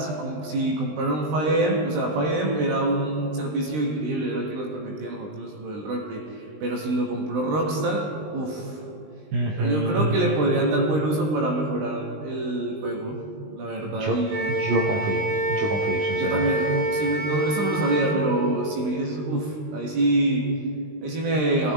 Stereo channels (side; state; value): left; late; 20 ms